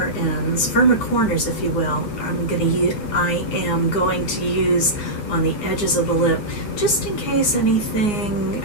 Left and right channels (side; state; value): right; late; 9.6 ms